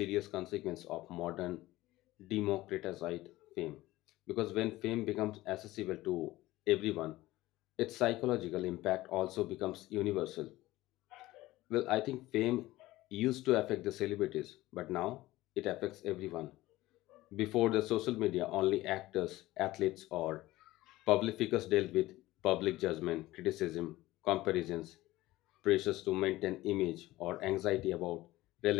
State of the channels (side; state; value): right; quieter; 17.6 dB